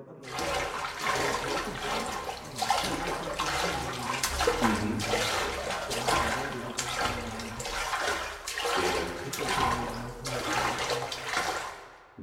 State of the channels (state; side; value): identical; both; correlation 1.00